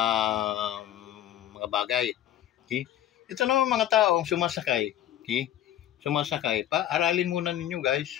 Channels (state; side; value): quieter; right; 11.8 dB